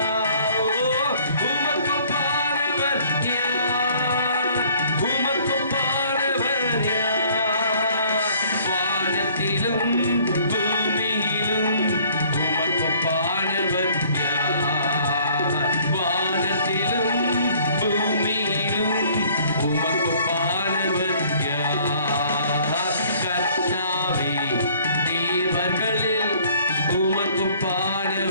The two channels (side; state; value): both; inverted; correlation -0.57